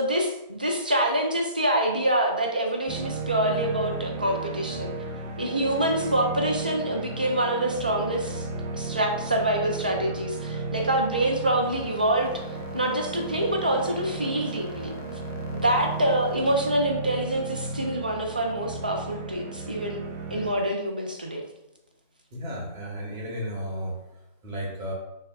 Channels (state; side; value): inverted; both; correlation -0.50